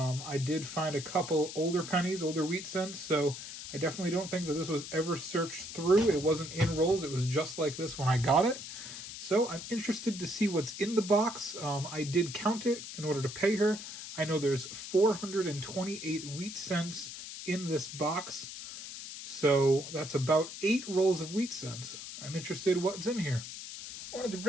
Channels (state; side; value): noise; left; hiss, 10 dB below the sound